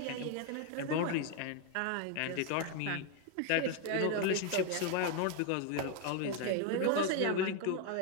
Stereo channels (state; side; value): different; both; correlation 0.01